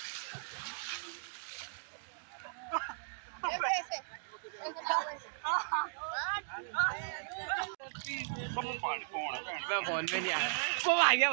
मैं फोन पे नहीं आया वो आ गया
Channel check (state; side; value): silent; left; digital silence